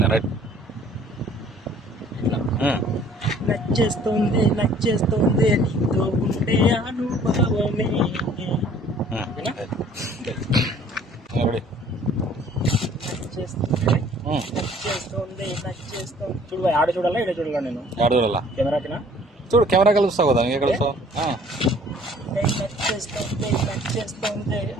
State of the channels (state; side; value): normal; both; correlation 0.55